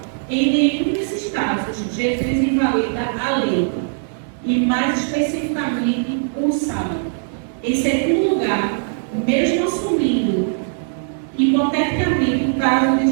em nenhum desses casos Jesus invalida a lei, e mais especificamente o sábado. Em segundo lugar, mesmo assumindo hipoteticamente o caso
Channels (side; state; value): left; silent; digital silence